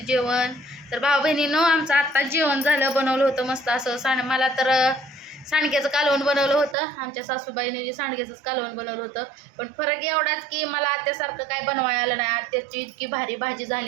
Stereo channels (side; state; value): left; drops out; at 6.8 s